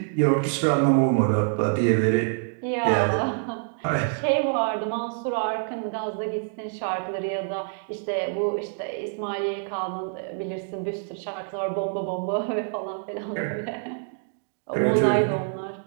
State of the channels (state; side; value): silent; left; digital silence